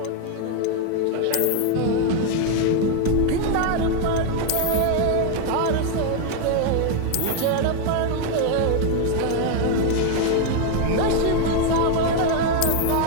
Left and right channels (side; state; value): both; different; correlation 0.01